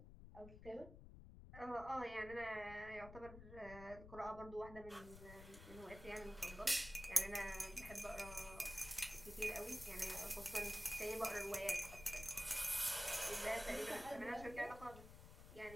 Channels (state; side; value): noise; left; rumble, 14 dB below the sound